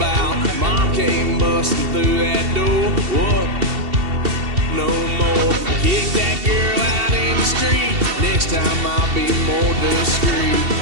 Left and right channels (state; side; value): late; left; 2.7 ms